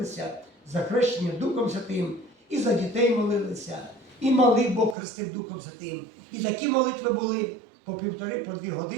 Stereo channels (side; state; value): left; drops out; at 5.0 s